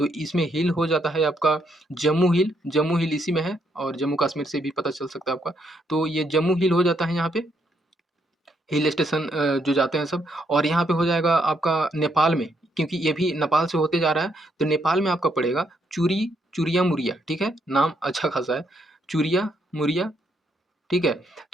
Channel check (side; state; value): both; normal; correlation 0.75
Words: इसमें हिल हो जाता है आपका जम्मू हिल इसी में है और जम्मू कश्मीर से भी पता चल सकता है आपका। तो ये जम्मू हिल हो जाता है यहाँ पे, हिल स्टेशन जो जाते हैं सब। और यहाँ पे हो जाएगा आपका नेपाल में, क्योंकि ये भी नेपाल से होते जा रहा है, तो नेपाल में आपका पड़ेगा चूरिया मुरिया, ठीक है? नाम अच्छा खासा है, चूरिया मुरिया, ठीक है?